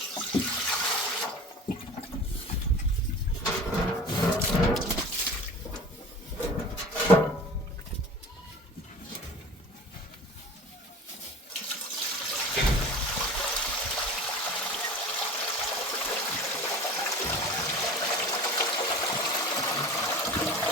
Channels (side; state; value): both; normal; correlation 0.39